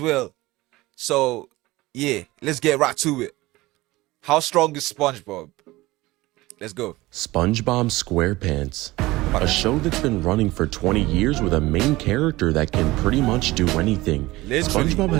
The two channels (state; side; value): quieter; left; 19.4 dB